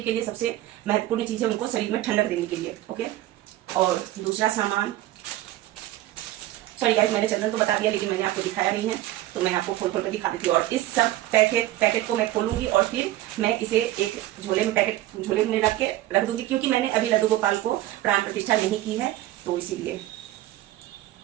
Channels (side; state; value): left; quieter; 15.3 dB